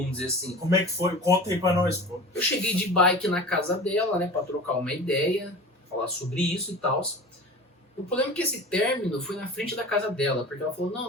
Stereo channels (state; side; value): normal; both; correlation 0.37